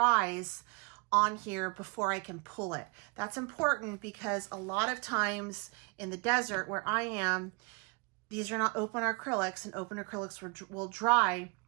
on here before I can pull it. That's important because a lot of times in the desert where I am, these are not open acrylics, and open acrylics will dry.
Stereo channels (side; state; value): left; quieter; 32.1 dB